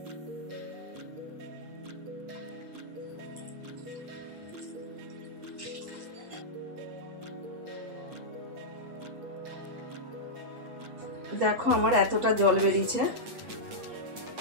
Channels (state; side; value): late; left; 8.4 ms